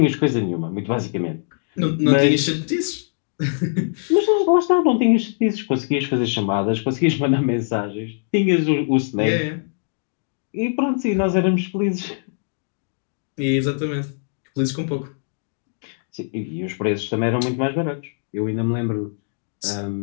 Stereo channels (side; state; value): right; silent; digital silence